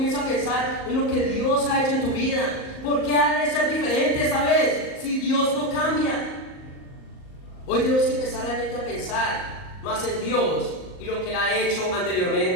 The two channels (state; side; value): late; right; 38 ms